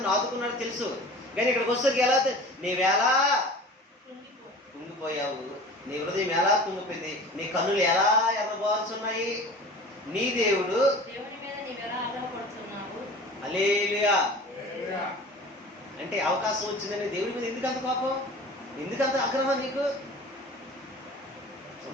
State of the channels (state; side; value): normal; both; correlation 0.40